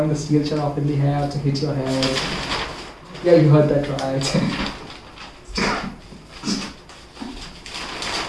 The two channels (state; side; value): identical; both; correlation 1.00